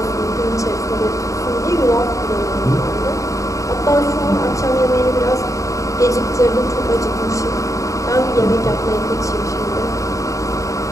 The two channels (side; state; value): right; late; 0.16 ms